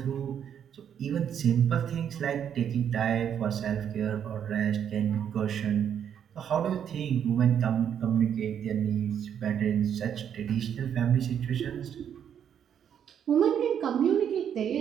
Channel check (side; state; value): left; quieter; 8.8 dB